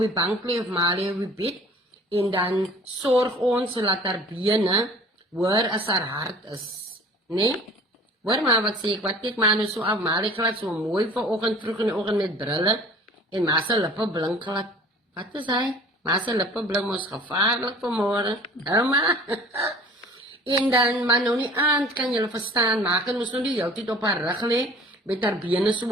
bank lê of ma lê op die bed, en dan sorg ons dat haar bene hoor as haar hart is. Nee? Hoor maar wat sê ek, wat kyk maar nou so af, maar ek laat so mooi vanoggend vroeg in die oggend met brille en ma se lippe blink glad. Wat is hy? Ma se lippe blink mos gevaarlik vanmôre. Ouma. En dan maar nou nie aand kan julle verstaan, maak en ons nou die heeltyd op haar rug lê met haar bene so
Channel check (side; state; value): both; normal; correlation 0.47